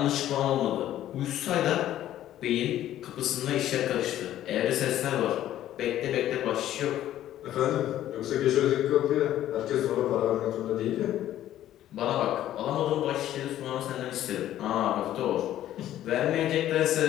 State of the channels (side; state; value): right; quieter; 12.6 dB